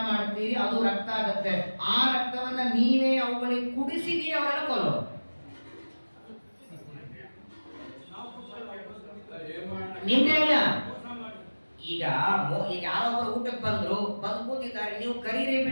ಮಾಡ್ತೀರಿ, ಅದು ರಕ್ತ ಆಗತ್ತೆ. ಆ ರಕ್ತವನ್ನ ನೀವೇ ಅವುಗಳಿಗೆ ಕುಡಿಸಿದೀರಿ, ಅವರನ್ನ ಕೊಲ್ಲೋ. ನಿಮ್ದೇ ಅಲ್ಲ. ಈಗ ಯಾರೊಬ್ಬರು ಊಟಕ್ಕೆ ಬಂದು ಕೂತಿದ್ದಾರೆ, ನೀವು ಕರೀರಿ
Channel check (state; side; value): inverted; both; correlation -1.00